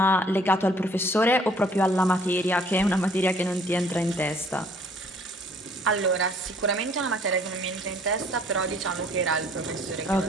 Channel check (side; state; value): both; normal; correlation 0.58